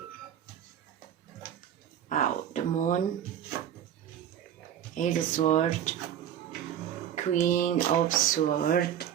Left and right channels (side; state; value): left; quieter; 10.1 dB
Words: Wow, the moon, Eight of Swords, Queen of Swords,